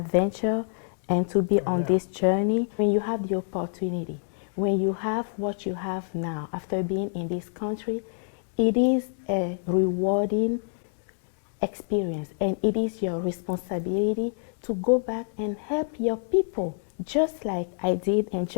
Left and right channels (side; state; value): right; silent; digital silence